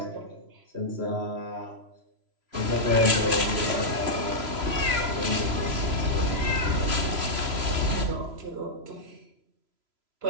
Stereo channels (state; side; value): late; left; 3.0 ms